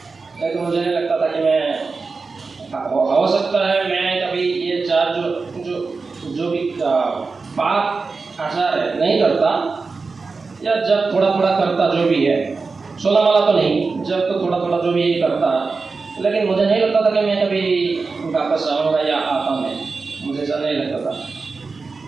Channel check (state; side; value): quieter; left; 4.3 dB